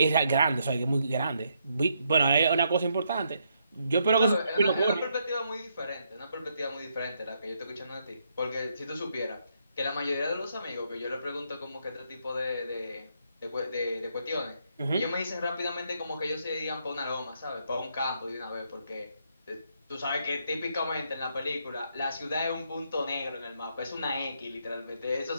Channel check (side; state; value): both; inverted; correlation -0.76